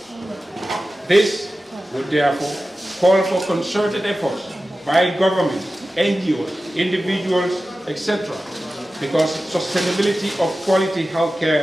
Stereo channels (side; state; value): both; normal; correlation 0.94